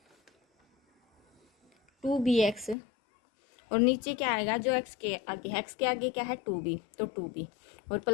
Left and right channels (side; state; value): right; drops out; at 2.8 s